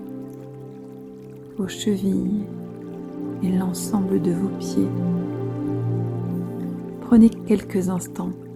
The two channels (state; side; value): identical; both; correlation 1.00